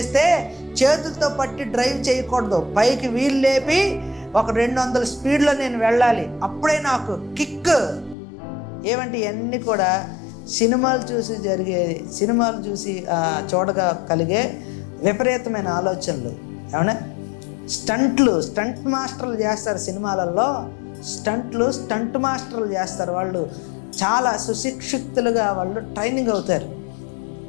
చేతులతో పట్టి డ్రైవ్ చేయకూడదు, పైకి వీల్ లేపి ఒక 200 స్పీడ్లో నేను వెళ్ళాలి, అప్పుడే నాకు కిక్. ఏమంటే ఇవన్నీ కూడా సినిమాలు చూసి చూడగా కలిగే విపరీతమైన ఆలోచనలు. ఏమన్నా స్టంట్ మాస్టర్లు చేస్తారు సినిమాలలో, స్టంట్ మాస్టర్లు చేస్తారు. వాళ్ళు చాలా సుశిక్షితులుగా వాళ్ళు ట్రైనింగ్ అవుతారు.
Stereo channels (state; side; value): drops out; right; at 8.2 s